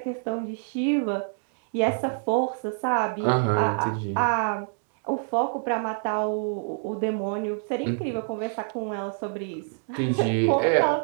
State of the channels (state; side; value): silent; left; 61 dB below the other